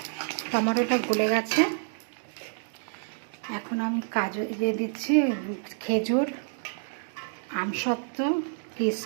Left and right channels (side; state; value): left; silent; digital silence